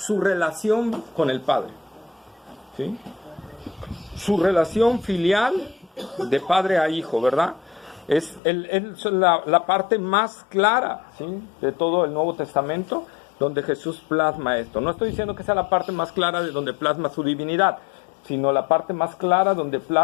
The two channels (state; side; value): drops out; right; at 8.4 s